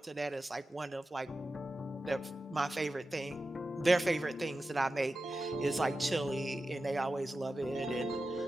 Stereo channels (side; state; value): both; normal; correlation 0.92